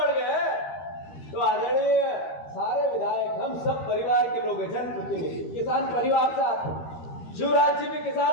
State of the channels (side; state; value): right; late; 13 ms